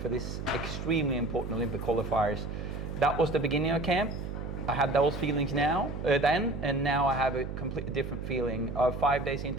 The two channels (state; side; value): noise; right; hum, 6 dB below the sound